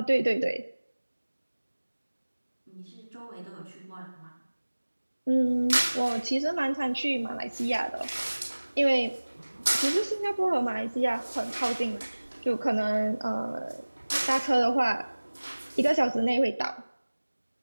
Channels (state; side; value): inverted; both; correlation -1.00